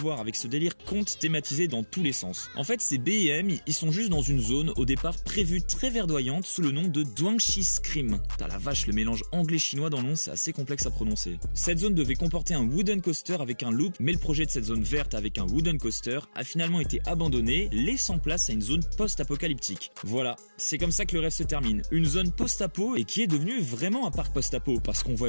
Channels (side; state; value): both; inverted; correlation -1.00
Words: avec ce délire conte thématisé dans tous les sens. En fait, ces BM, ils sont juste dans une zone au départ prévue très verdoyante sous le nom de Duangxi Scream. T'as la vache, le mélange anglais-chinois dans le nom, c'est assez complexe à prononcer. Cette zone devait comporter un wooden coaster avec un loop, mais le projet de cette zone verte avec un wooden coaster a finalement été abandonné, laissant place à une zone post-apocalyptique. Voilà, c'est comme ça que le rêve se termine. Une zone post-apo et qui est devenue vraiment un parc post-apo parce qu'on voit